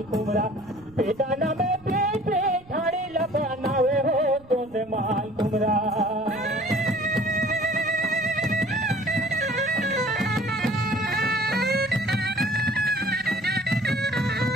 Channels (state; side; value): noise; right; rumble, 25 dB below the sound